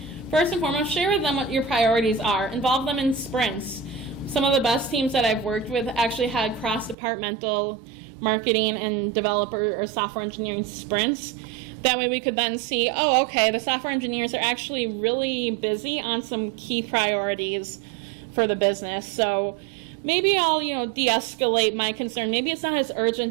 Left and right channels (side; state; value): left; drops out; at 7.0 s